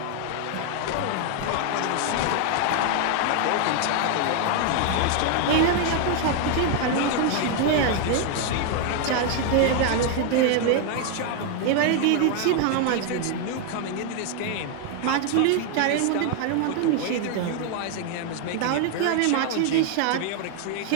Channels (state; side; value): different; both; correlation 0.00